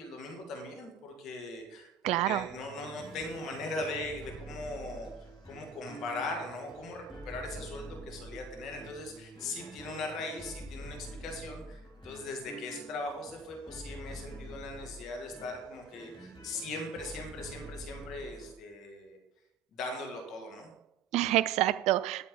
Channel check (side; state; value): left; quieter; 4.1 dB